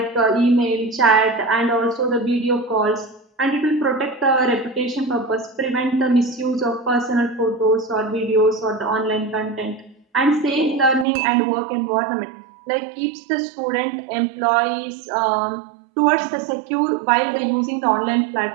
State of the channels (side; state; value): left; drops out; at 11.1 s